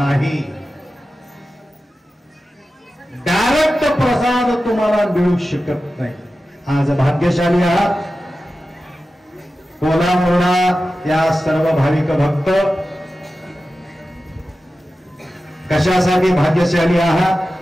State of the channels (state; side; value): normal; both; correlation 0.94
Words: डायरेक्ट प्रसाद तुम्हाला मिळू शकत नाही. आज भाग्यशाली आहात. कोलामोडा या सर्व भाविक भक्त कशासाठी भाग्यशाली आहात?